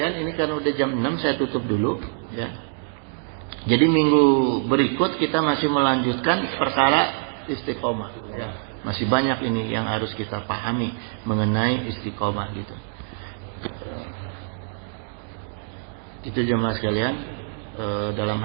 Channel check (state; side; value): silent; left; digital silence